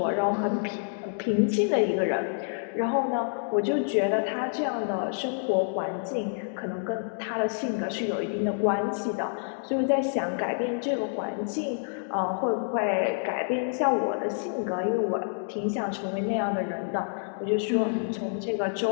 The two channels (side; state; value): right; silent; digital silence